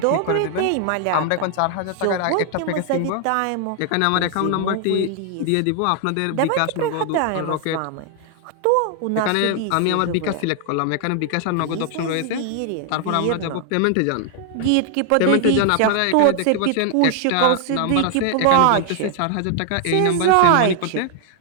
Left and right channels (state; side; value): different; both; correlation 0.00